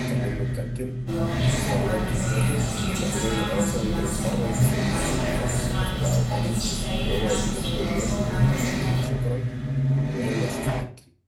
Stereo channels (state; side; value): identical; both; correlation 1.00